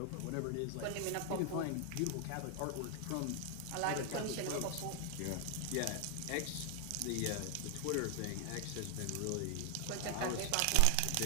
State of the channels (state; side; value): different; both; correlation 0.00